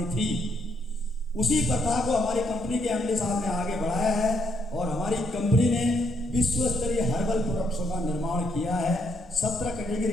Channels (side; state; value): both; normal; correlation 0.75